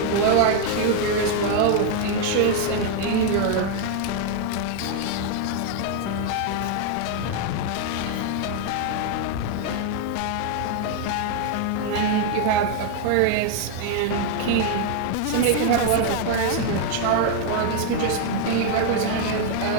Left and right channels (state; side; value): different; both; correlation 0.00